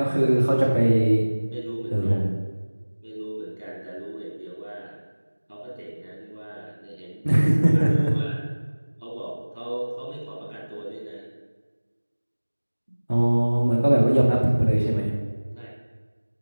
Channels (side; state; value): both; inverted; correlation -1.00